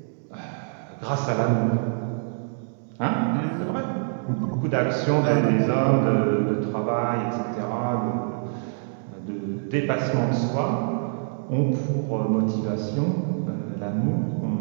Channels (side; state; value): left; silent; digital silence